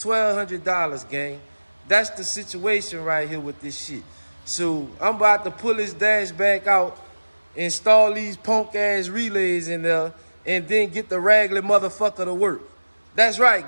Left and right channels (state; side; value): inverted; both; correlation -1.00